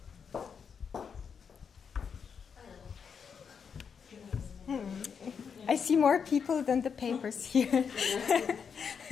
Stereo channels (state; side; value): quieter; right; 6.6 dB